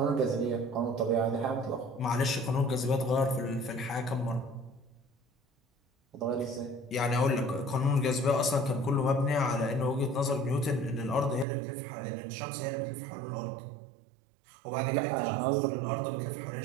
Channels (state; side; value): drops out; left; at 11.5 s